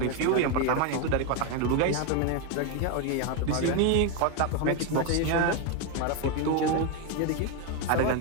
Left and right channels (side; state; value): both; different; correlation 0.02